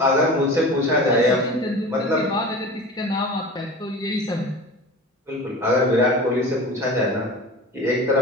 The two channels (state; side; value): normal; both; correlation 0.36